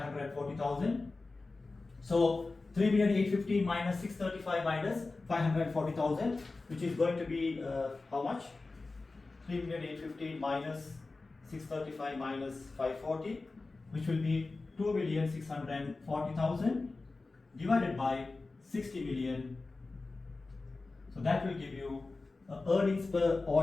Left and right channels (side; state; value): right; quieter; 3.6 dB